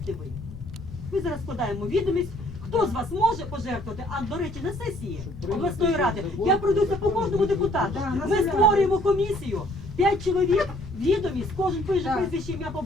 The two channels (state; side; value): noise; left; rumble, 14 dB below the sound